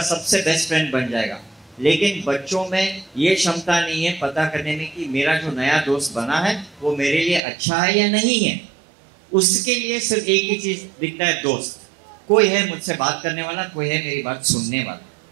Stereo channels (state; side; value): drops out; left; at 7.4 s